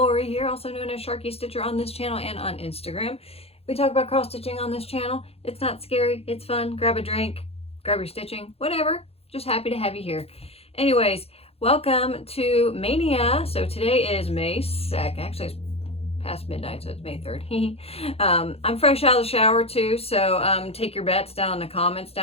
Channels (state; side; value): late; right; 0.29 ms